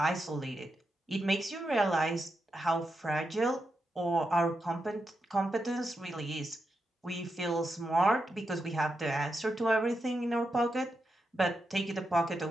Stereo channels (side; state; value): both; normal; correlation 0.86